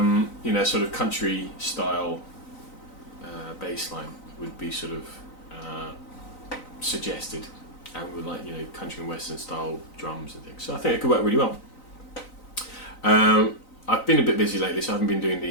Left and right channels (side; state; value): right; late; 3.9 ms